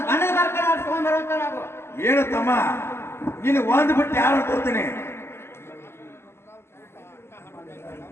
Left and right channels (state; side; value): late; right; 0.12 ms